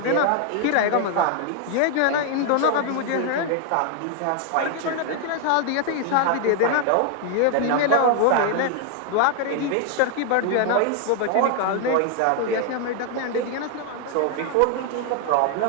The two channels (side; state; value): both; different; correlation 0.00